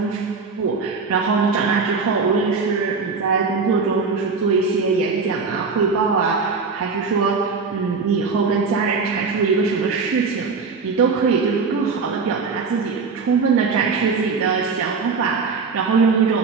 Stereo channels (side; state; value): left; quieter; 4.8 dB